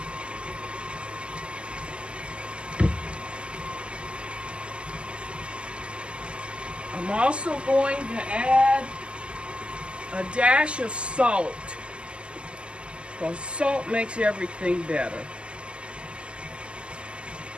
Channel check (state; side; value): late; left; 0.052 ms